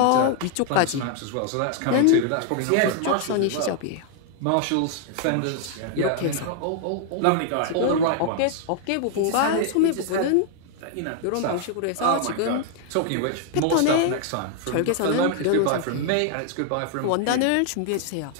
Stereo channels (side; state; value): both; different; correlation 0.00